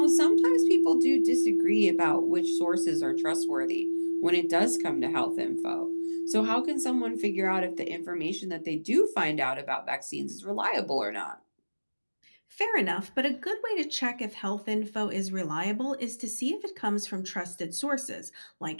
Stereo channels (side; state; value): both; inverted; correlation -1.00